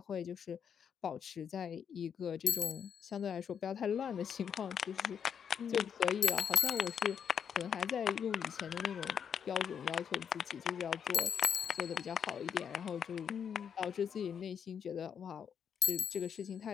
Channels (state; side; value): quieter; right; 7.6 dB